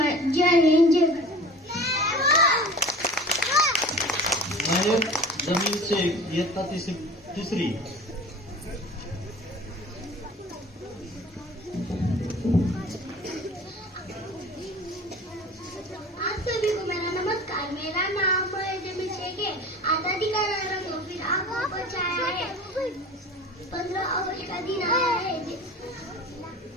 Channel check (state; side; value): normal; both; correlation 0.40